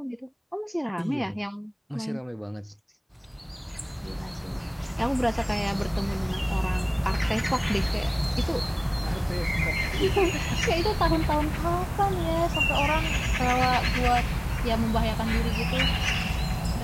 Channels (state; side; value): identical; both; correlation 1.00